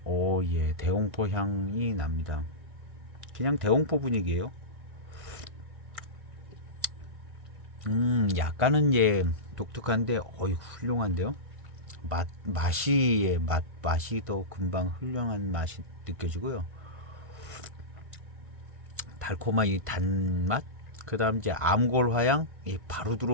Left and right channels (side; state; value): left; late; 1.5 ms